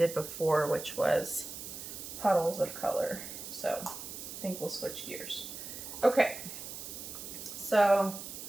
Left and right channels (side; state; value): right; noise; hiss, 9 dB below the sound